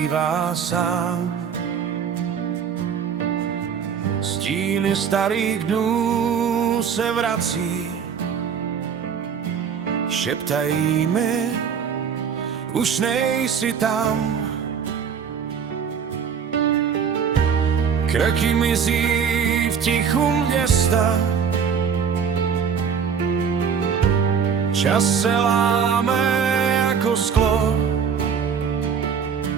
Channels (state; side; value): quieter; left; 6.9 dB